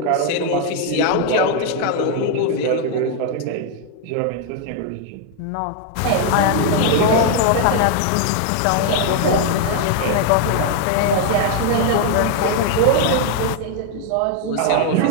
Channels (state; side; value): different; both; correlation 0.00